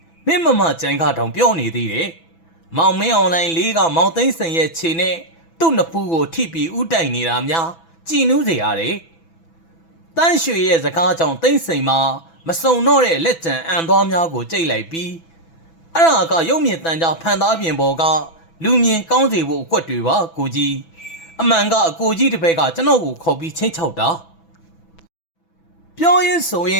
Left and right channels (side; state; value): right; late; 6.0 ms